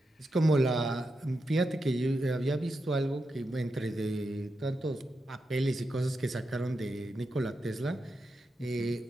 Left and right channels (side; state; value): both; normal; correlation 0.87